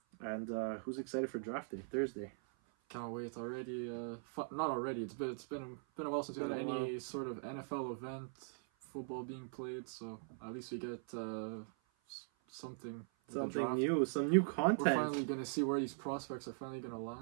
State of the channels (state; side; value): silent; left; 50 dB below the other